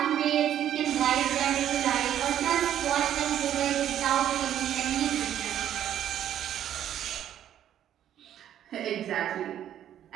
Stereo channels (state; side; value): quieter; left; 10.8 dB